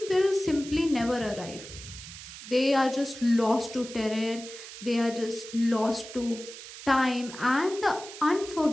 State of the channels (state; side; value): noise; right; hiss, 13 dB below the sound